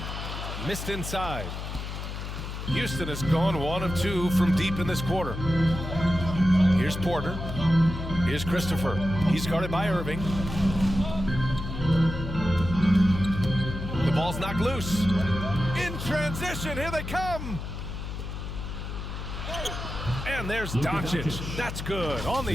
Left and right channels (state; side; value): noise; left; hum, 7 dB below the sound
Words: Missed inside. Houston has gone 1 of 2 from deep in this quarter. Here's Porter. Here's Christopher. He's guarded by Irving. The ball Ball's knocked loose. In transition, here they come. And there's Doncic. That's good. On